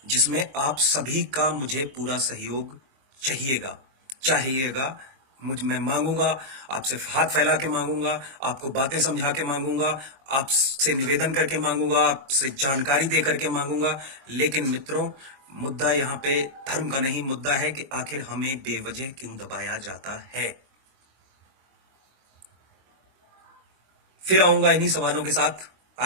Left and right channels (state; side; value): late; left; 22 ms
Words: जिसमें आप सभी का मुझे पूरा सहयोग चाहिएगा। मैं मांगूंगा, आपसे हाथ फैला के मांगूंगा, आपको बातें समझा के मांगूंगा, आपसे निवेदन करके मांगूंगा, आपसे जानकारी दे करके मांगूंगा। लेकिन मित्रों, मुद्दा यहाँ पे धर्म का नहीं, मुद्दा है कि आखिर हमें बेवजह क्यों दबाया जाता है। फिर आऊंगा इन्हीं सवालों के साथ।